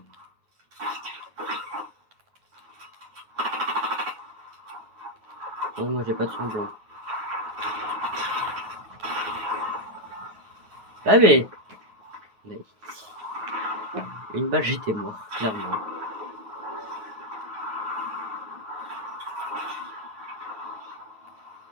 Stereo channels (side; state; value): left; late; 9.4 ms